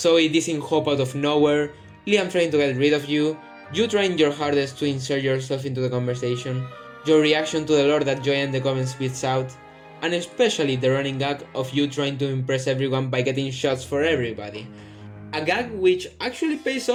dissing Hope out of nowhere, Liam trying to get rid of you trying your hardest to insert yourself into the conversation, your reaction to the lore that Joy and the Coven spits out, and especially the running gag of you trying to impress everyone by getting shots for everybody. A gag which actually pays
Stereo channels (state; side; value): identical; both; correlation 1.00